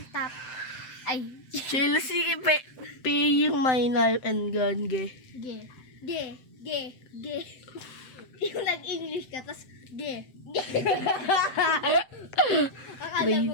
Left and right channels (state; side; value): late; right; 7.8 ms